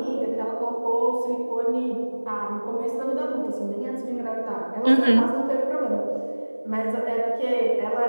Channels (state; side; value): inverted; both; correlation -1.00